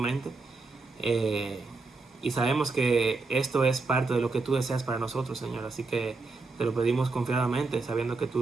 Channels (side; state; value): left; quieter; 3.8 dB